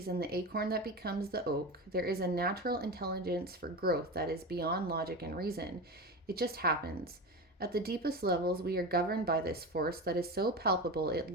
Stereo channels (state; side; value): normal; both; correlation 0.23